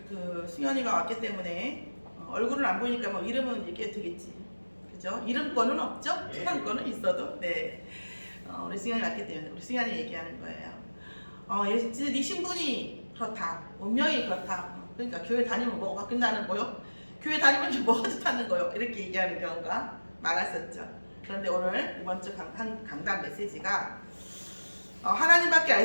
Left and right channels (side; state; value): both; inverted; correlation -1.00